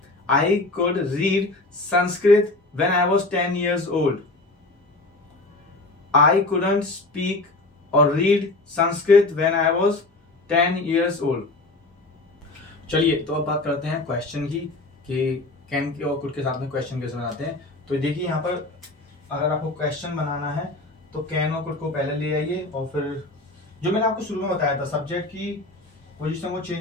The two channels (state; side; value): quieter; right; 3.0 dB